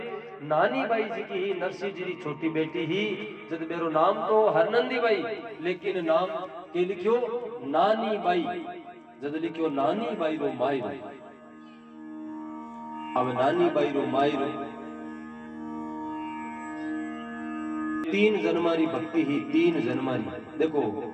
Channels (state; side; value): identical; both; correlation 1.00